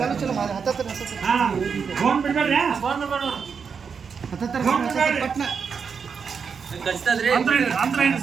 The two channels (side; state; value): left; quieter; 6.1 dB